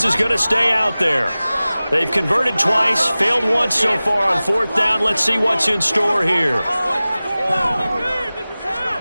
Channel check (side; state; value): both; inverted; correlation -0.98